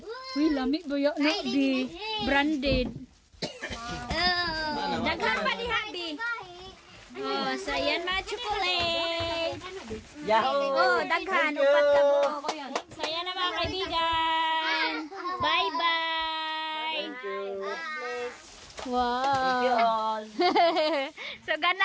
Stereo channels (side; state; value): both; identical; correlation 1.00